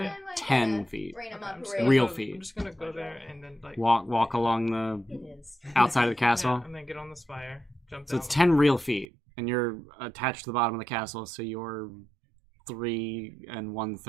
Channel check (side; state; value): left; drops out; at 9.1 s